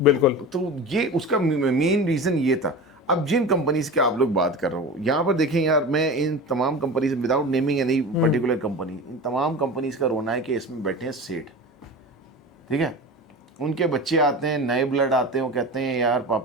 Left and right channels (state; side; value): normal; both; correlation 0.31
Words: बिल्कुल। तो ये उसका मेन रीजन ये था। अब जिन कंपनीज के आप लोग बात कर रहे हो, यहाँ पर देखें यार, मैं इन तमाम companies, without naming any particular company, इन तमाम कंपनीज का रोना है कि इसमें बैठे हैं सेठ, ठीक है, उनके बच्चे आते हैं, नए ब्लड आते हैं, वो कहते हैं यार